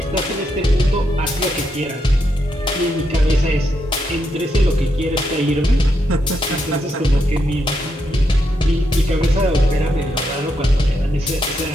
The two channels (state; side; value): normal; both; correlation 0.81